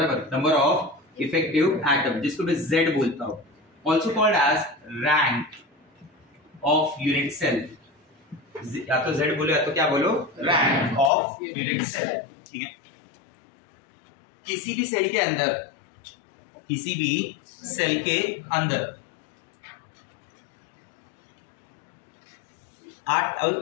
नंबर ऑफ इफेक्टिव एटम, जिसको मैं Z बोलता हूं, also called as rank of unit cell। या तो Z बोलो या तो क्या बोलो? rank of unit cell, ठीक है। किसी भी सेल के अंदर, किसी भी सेल के अंदर 8,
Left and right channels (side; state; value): right; drops out; at 11.1 s